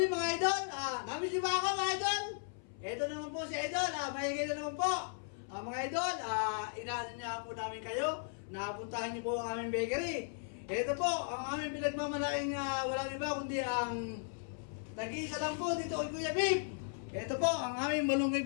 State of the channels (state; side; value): silent; right; 53 dB below the other